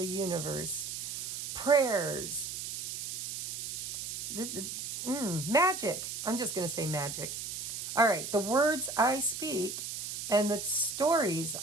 universe. Prayers. Magic. I'm just going to say magic. All right. The words I speak and the stories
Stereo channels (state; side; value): noise; right; hiss, 5 dB below the sound